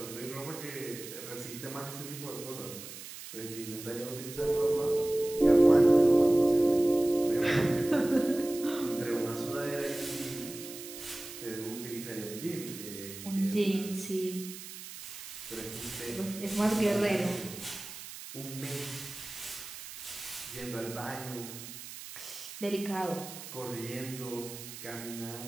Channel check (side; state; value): right; noise; hiss, 12 dB below the sound